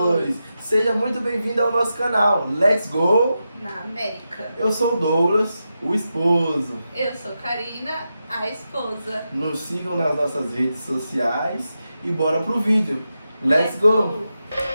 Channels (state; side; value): inverted; both; correlation -0.89